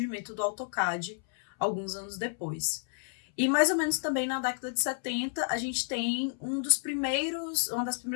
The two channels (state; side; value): silent; right; 57 dB below the other